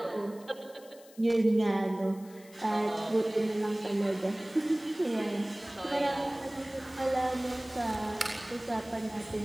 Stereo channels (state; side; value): noise; left; hiss, 24 dB below the sound